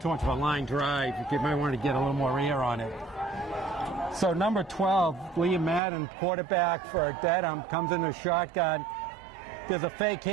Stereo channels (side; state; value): left; drops out; at 5.8 s